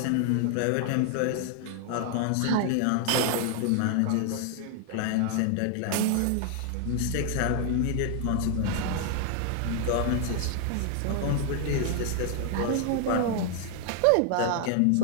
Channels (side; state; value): both; different; correlation 0.00